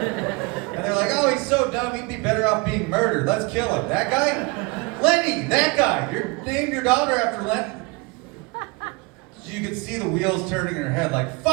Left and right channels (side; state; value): left; quieter; 27.3 dB